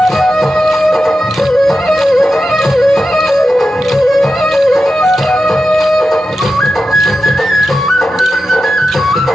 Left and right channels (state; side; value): normal; both; correlation 0.91